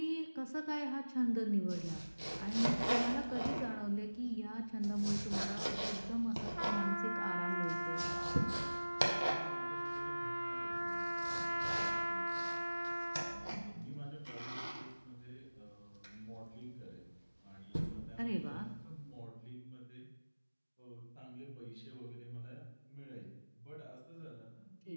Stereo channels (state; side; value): inverted; both; correlation -1.00